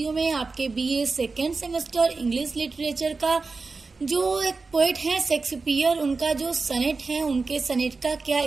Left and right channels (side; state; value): left; quieter; 4.1 dB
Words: में आपके BA second semester English literature का जो एक पोएट है शेक्सपियर, उनका जो सनेट है, उनके सनेट का क्या